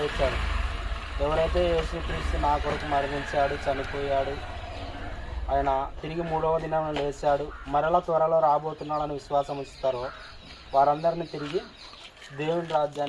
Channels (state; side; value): identical; both; correlation 1.00